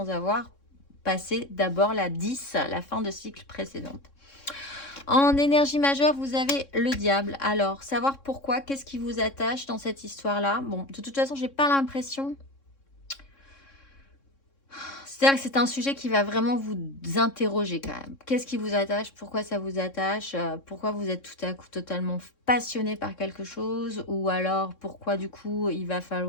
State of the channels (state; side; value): late; right; 3.6 ms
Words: avoir passé d'abord la 10, la fin de cycle précédente. En énergie majeure, vous avez le diable. Alors, savoir pourquoi, qu'est-ce qui vous attache dans cette histoire-là? Bon, de toute façon, j'ai pas l'impression. C'est-à-dire que c'est un sujet qui va vraiment vous interroger quand même. Qu'est-ce qui vous attache? Pourquoi ça vous attache? Pourquoi vous êtes tout à coup totalement passionné par quelque chose? Ou alors, pourquoi du coup, il va